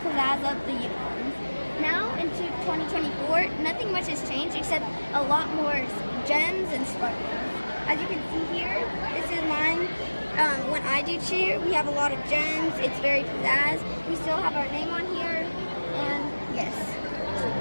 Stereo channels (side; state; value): both; inverted; correlation -1.00